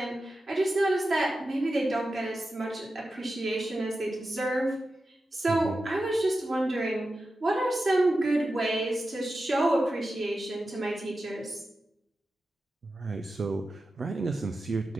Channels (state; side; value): normal; both; correlation 0.92